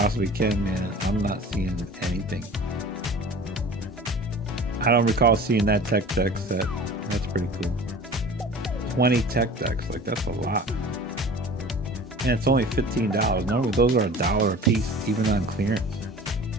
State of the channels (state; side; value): normal; both; correlation 0.42